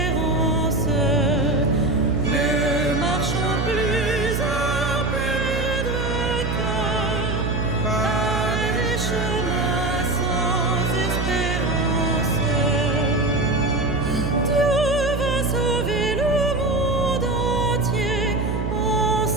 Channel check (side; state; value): right; noise; hum, 1 dB below the sound